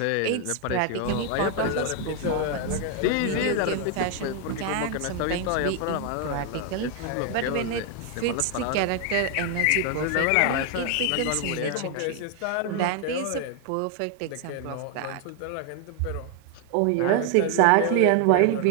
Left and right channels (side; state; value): both; different; correlation 0.00